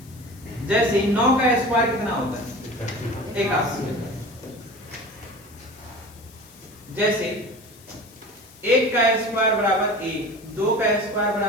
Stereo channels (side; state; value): left; noise; hiss, 24 dB below the sound